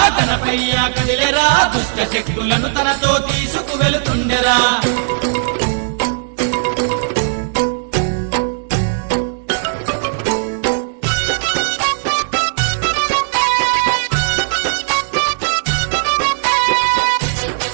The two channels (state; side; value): silent; left; digital silence